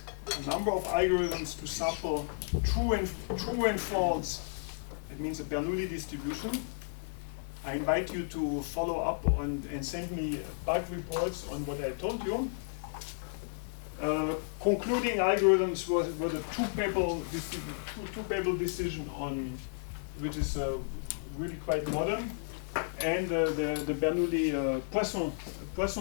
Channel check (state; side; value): silent; right; digital silence